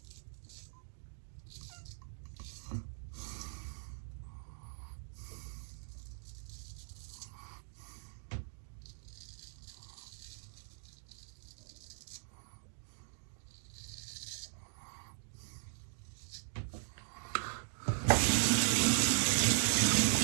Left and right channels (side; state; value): left; silent; digital silence